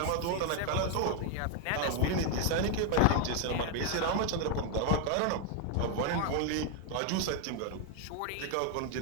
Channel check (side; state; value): both; different; correlation 0.00